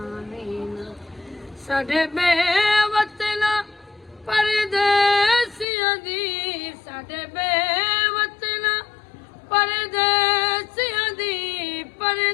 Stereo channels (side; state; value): right; drops out; at 5.7 s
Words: ਨਾ ਸਾਡੇ ਬੇਵਤਨਾ ਪਰਦੇਸੀਆਂ ਦੀ ਸਾਡੇ ਬੇਵਤਨਾ ਪਰਦੇਸੀਆਂ ਦੀ